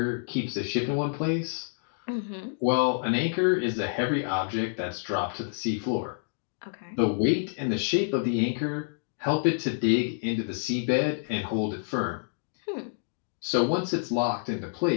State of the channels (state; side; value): silent; right; digital silence